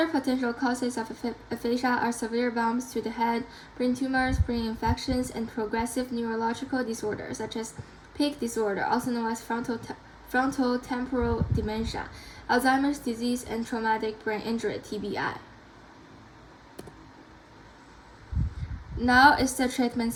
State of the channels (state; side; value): identical; both; correlation 1.00